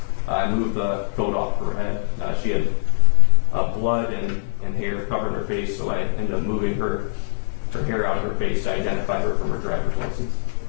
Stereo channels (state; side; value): silent; right; digital silence